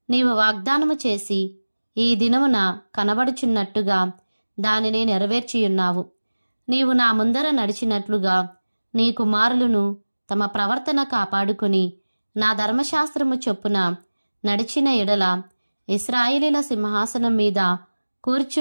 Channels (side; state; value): both; inverted; correlation -1.00